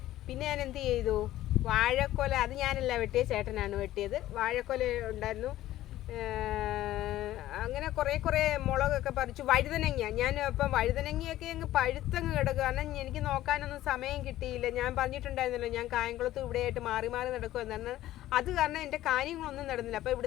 ഞാൻ എന്ത് ചെയ്തു, വാഴക്കൊല അത് ഞാനല്ല വെട്ടിയത്, ചേട്ടനാണ് വെട്ടിയത്. വാഴക്കൊല ഉണ്ടായിരുന്നു. അങ്ങനെ കുറേ മുളകൊക്കെ പറിച്ചു. വഴുതനങ്ങ ഞാൻ ഇപ്പം വഴുതനങ്ങയൊക്കെ അങ്ങ് പഴുത്തങ്ങ് കിടക്കുക. കാരണം എനിക്ക് നോക്കാനൊന്നും സമയം കിട്ടിയില്ല. ഞാൻ പറഞ്ഞിട്ടുണ്ടായിരുന്നല്ലോ, ഞാൻ കായംകുളത്ത് ഇവിടെയായിട്ട് മാറി നടക്കുമെന്നാണ്. അത് കാരണം എൻ്റെ കാര്യങ്ങളൊന്നും നടന്നില്ല. അപ്പോൾ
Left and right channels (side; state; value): right; quieter; 14.4 dB